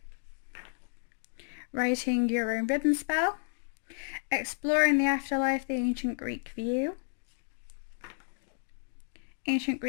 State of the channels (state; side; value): silent; right; digital silence